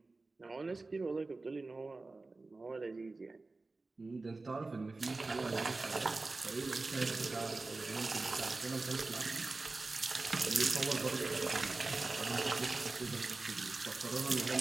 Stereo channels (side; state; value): left; quieter; 3.5 dB